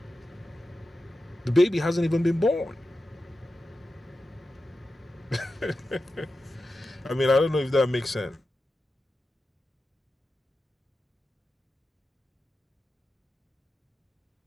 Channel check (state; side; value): normal; both; correlation 0.92